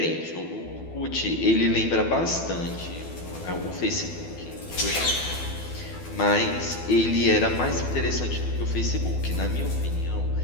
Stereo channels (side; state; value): right; late; 12 ms